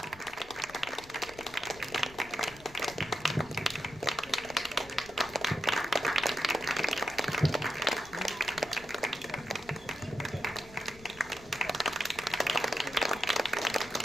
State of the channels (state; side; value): noise; left; rumble, 21 dB below the sound